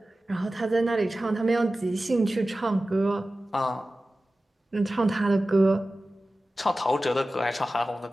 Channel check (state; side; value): normal; both; correlation 0.96